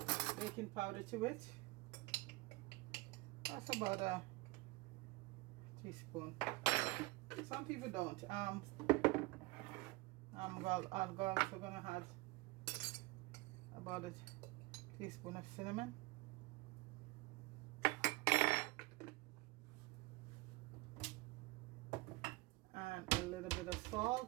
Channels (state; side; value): quieter; left; 22.2 dB